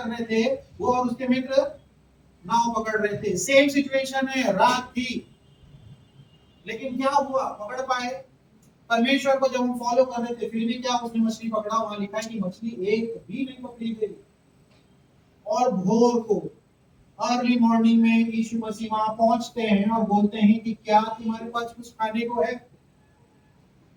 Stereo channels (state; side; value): identical; both; correlation 1.00